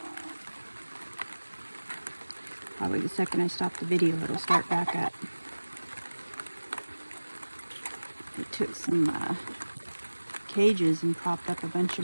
Probably the second I stop the video, it'll start back up. I took some cages and propped up a bunch of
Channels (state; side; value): inverted; both; correlation -1.00